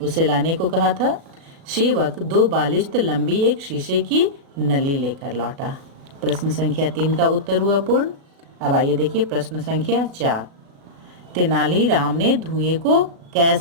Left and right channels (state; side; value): late; left; 36 ms